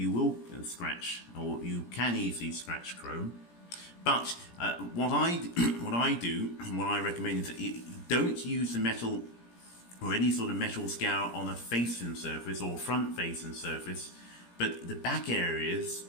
will scratch, or you can easily scratch chrome. But what I do, and what I recommend, is that you don't use the metal or any sort of metal scour on a facing surface or front facing surface, but the back areas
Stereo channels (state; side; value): late; right; 17 ms